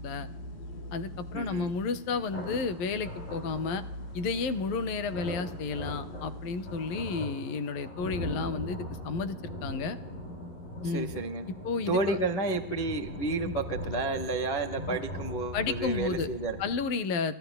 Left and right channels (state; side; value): late; right; 11 ms